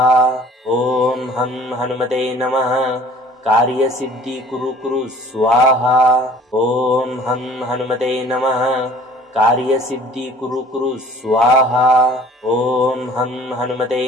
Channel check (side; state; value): both; normal; correlation 0.50